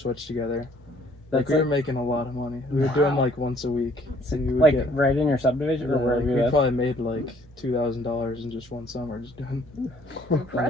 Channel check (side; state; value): both; normal; correlation 0.60